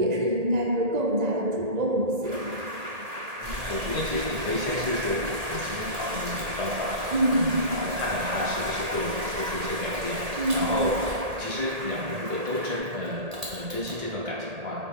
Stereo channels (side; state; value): left; late; 1.8 ms